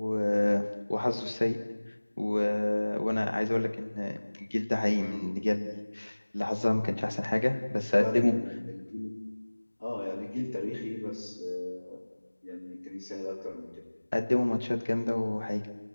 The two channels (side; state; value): both; inverted; correlation -1.00